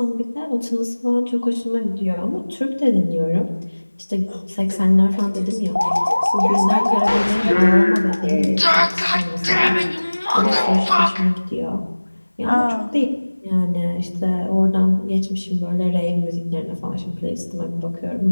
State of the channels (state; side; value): inverted; both; correlation -1.00